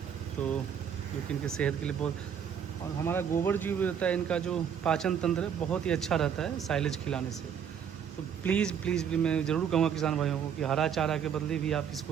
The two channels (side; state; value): left; quieter; 8.1 dB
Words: तो जो कि इनके सेहत के लिए बहुत, और हमारा गोबर जो भी रहता है, इनका जो पाचन तंत्र है बहुत ही अच्छा रहता है साइलेज खिलाने से। तो प्लीज़ मैं ज़रूर कहूँगा किसान भाइयों को कि हरा चारा के बदले भी आप